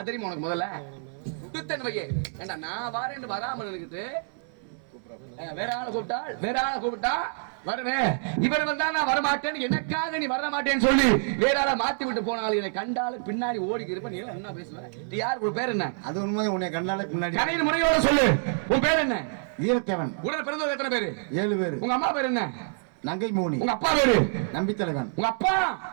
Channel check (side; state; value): left; silent; 59 dB below the other